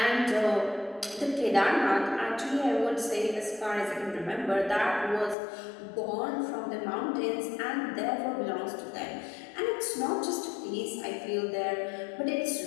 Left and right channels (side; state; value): right; drops out; at 5.4 s